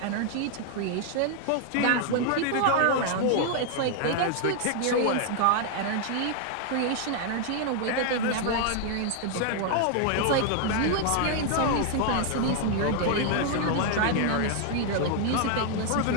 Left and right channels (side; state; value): both; different; correlation 0.00